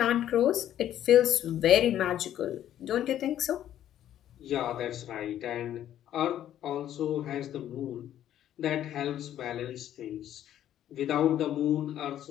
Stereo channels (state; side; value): quieter; right; 11.4 dB